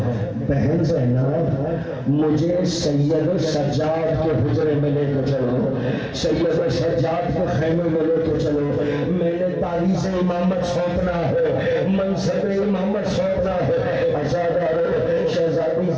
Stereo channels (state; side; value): identical; both; correlation 1.00